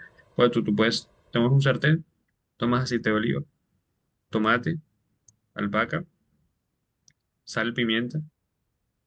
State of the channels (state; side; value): identical; both; correlation 1.00